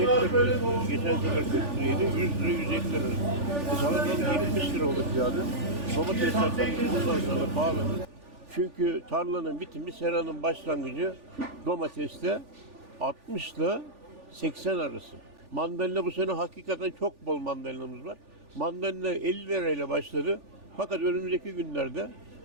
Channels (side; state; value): left; late; 3.4 ms